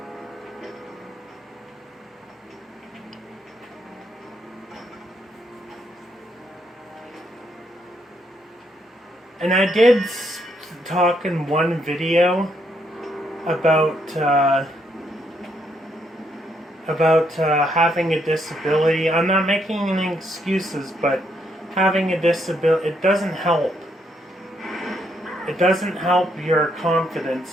And I did talk in one video about having a disability. I'm not making any excuses, but having a disability, it doesn't help. It doesn't help your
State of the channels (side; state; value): both; normal; correlation 0.74